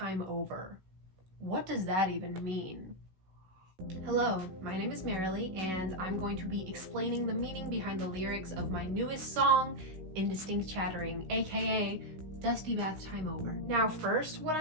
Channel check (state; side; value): late; left; 16 ms